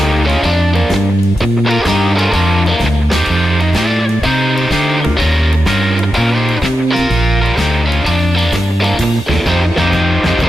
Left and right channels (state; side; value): normal; both; correlation 0.90